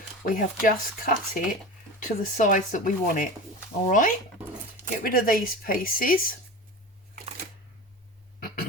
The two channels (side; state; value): both; normal; correlation 0.31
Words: We have just cut it to the size that we want it. All right, get rid of these pieces.